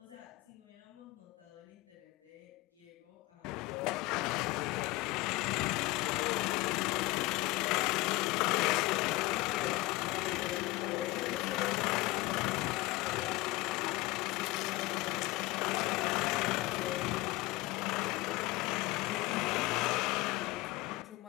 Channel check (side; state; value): right; quieter; 20.1 dB